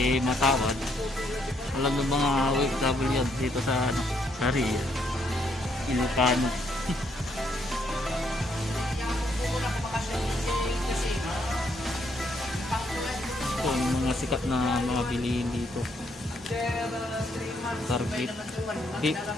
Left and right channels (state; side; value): normal; both; correlation 0.72